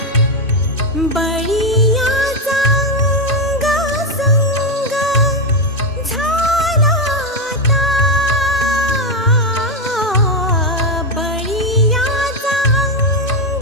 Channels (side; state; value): both; normal; correlation 0.08